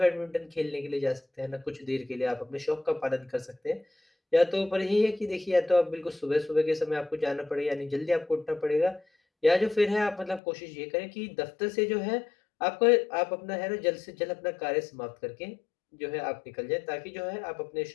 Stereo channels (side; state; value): right; drops out; at 10.4 s